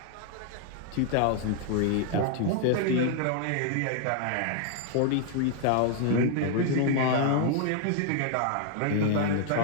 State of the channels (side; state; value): both; different; correlation 0.00